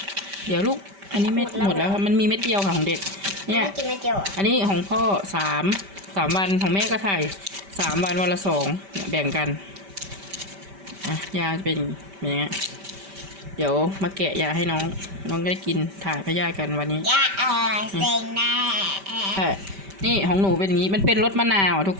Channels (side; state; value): left; late; 5.1 ms